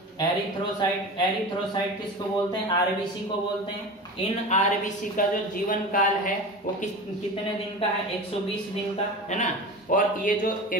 एरिथ्रोसाइट, एरिथ्रोसाइट किसको बोलते हैं? आरबीसी को बोलते हैं। इन आरबीसी का जो जीवन काल है वो कितने दिन का है? 120 दिन का, है ना। और ये जो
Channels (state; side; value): normal; both; correlation 0.31